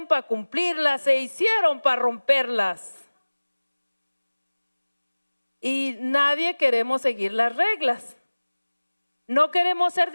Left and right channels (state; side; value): inverted; both; correlation -1.00